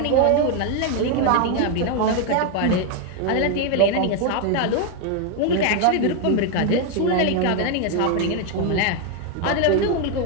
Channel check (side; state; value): both; different; correlation 0.01